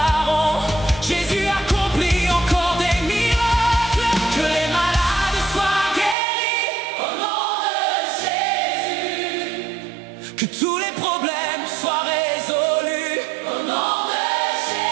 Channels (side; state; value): left; drops out; at 6.2 s